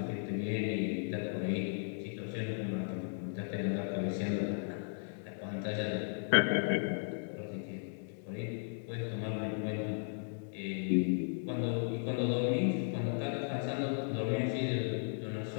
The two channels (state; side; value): silent; right; digital silence